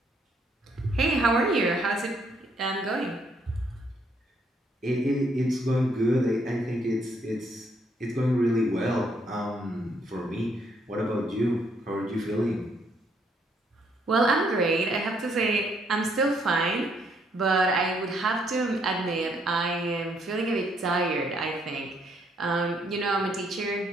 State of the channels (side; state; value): both; normal; correlation 0.70